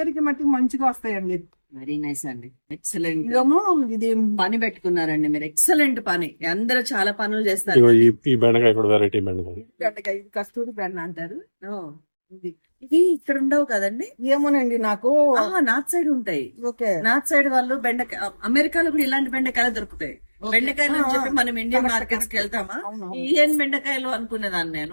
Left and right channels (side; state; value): both; inverted; correlation -1.00